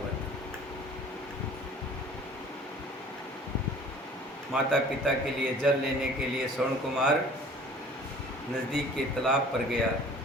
था। माता पिता के लिए जल लेने के लिए श्रवण कुमार नज़दीक के तालाब पर गया।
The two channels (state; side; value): normal; both; correlation 0.48